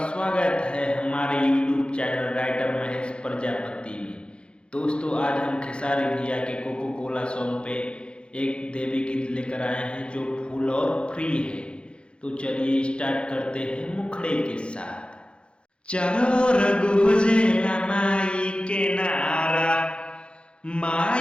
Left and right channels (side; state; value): right; late; 0.056 ms